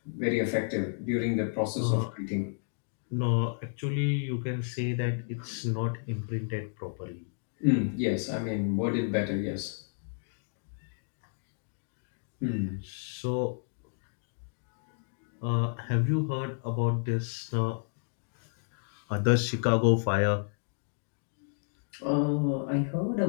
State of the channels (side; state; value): right; silent; digital silence